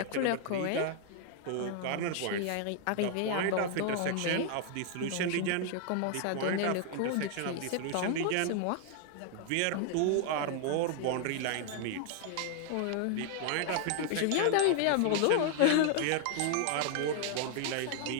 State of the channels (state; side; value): different; both; correlation 0.00